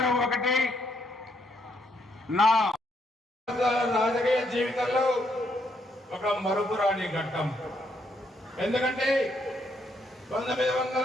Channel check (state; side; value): normal; both; correlation 0.74